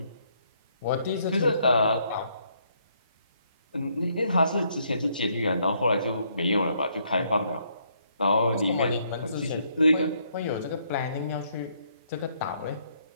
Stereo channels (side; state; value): both; inverted; correlation -0.71